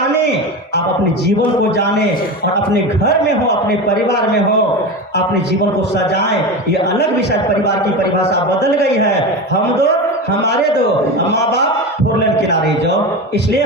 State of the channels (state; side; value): normal; both; correlation 0.24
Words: आप अपने जीवन को जाने और अपने घर में हो, अपने परिवार में हो, अपने जीवन को सजाएं। ये अलग विषय, परिवार की परिभाषा बदल गई है। हम दो, हमारे दो, माँ बाप, 4 लेन किनारे जाओ। इसलिए